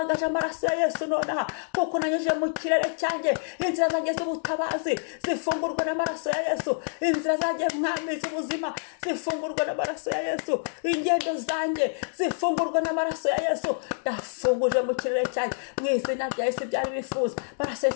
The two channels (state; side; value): silent; right; 60 dB below the other